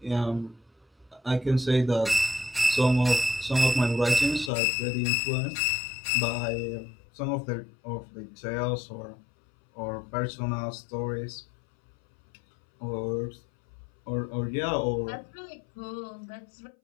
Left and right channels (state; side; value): drops out; right; at 4.5 s